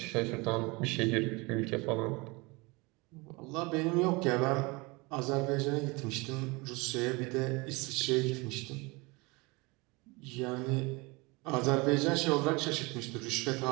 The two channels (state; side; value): quieter; left; 25.9 dB